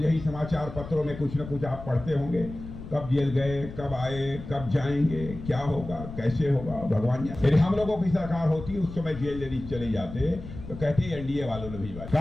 ही समाचार पत्रों में कुछ न कुछ आप पढ़ते होंगे, कब जेल गए, कब आए, कब जाएंगे, क्या होगा, कैसे होगा, भगवान जाने। यदि हम लोगों की सरकार होती उस समय जेल यदि चले जाते तो कहते एनडीए वालों ने भी,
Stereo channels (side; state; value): left; noise; rumble, 12 dB below the sound